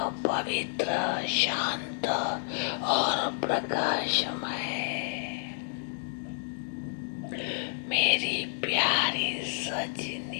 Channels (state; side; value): silent; right; digital silence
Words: पवित्र, शांत और प्रकाशमय। मेरी प्यारी